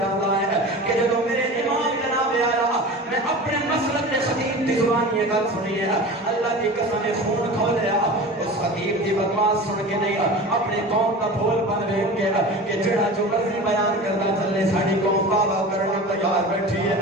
ہے کہ جب میرے امام جناب پیارا میں اپنے مسلک میں خطیب کی زبان یہ گل سنی ہے اللہ کی قسم خون کھولیا اس خطیب کی بکواس سن کے نہیں اپنے قوم کا بھول بن دیکھ کے کہ جڑا جو مرضی بیان کرتا چلے ساری قوم بابا کرنا تیار بیٹھی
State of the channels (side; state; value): both; normal; correlation 0.34